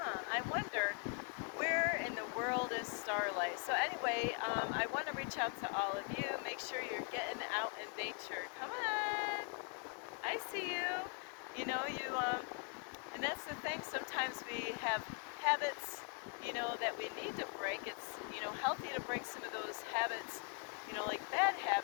I wonder, where in the world is Starlight? So anyway, I want to reach out to all of you. Make sure you're getting out in nature. Come on! I see you. And that's the thing. Sometimes we have habits, that we need to break. It's, healthy to break some of those habits, like bad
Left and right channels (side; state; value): right; quieter; 36.7 dB